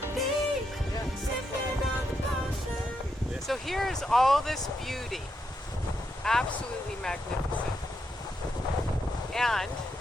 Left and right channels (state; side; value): normal; both; correlation 0.82